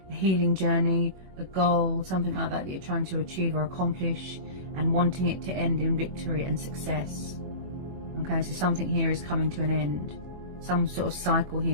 a healing journey, a goal, something like that you're trying to achieve or accomplish, and wanting it to end in victory and success. Okay, so something here is coming to an end. Some sort of cycle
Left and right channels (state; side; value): late; left; 22 ms